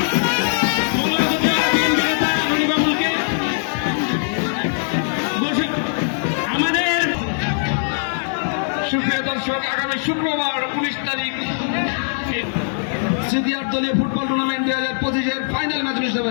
মঙ্গলগঞ্জের বিএনপি নেতা রনিবাবুলকে আমাদের সুপ্রিয় দর্শক, আগামী শুক্রবার 19 তারিখ সিনিয়র দলীয় ফুটবল টুর্নামেন্ট 2025-এর ফাইনাল ম্যাচ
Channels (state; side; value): silent; right; 65 dB below the other